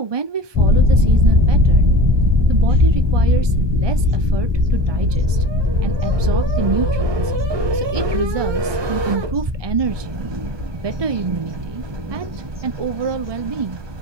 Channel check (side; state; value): left; late; 1.2 ms